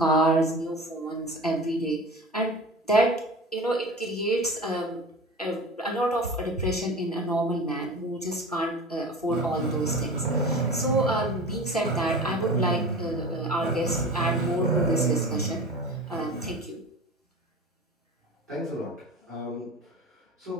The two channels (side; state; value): both; normal; correlation 0.35